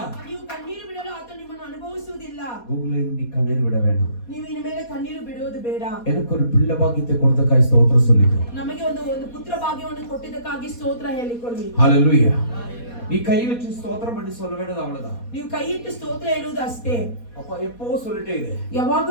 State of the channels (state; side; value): late; right; 4.2 ms